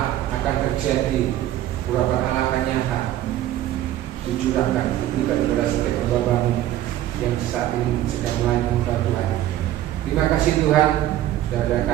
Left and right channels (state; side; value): quieter; left; 13.3 dB